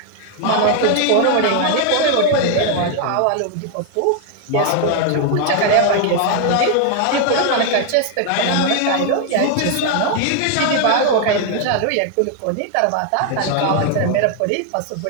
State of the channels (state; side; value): different; both; correlation 0.00